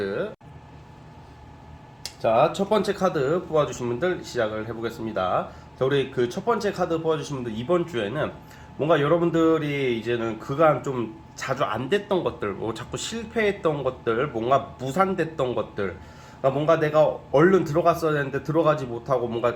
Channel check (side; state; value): both; identical; correlation 1.00